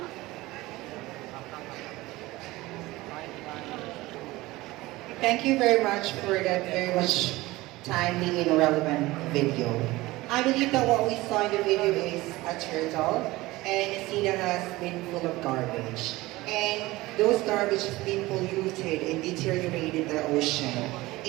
Thank you very much for that very much timely and relevant video. I believe that what we saw in the video is a turtle and a sea that has been full of garbage. And those garbage has been polluted and deteriorated the ocean.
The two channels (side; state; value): left; quieter; 19.5 dB